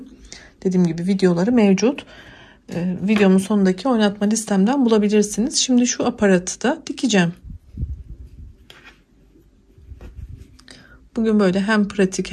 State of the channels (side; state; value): both; identical; correlation 1.00